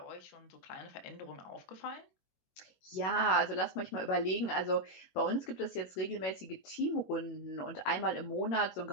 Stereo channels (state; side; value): late; right; 21 ms